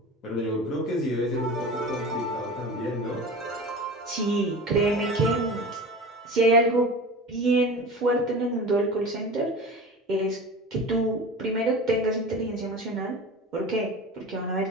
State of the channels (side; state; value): both; normal; correlation 0.33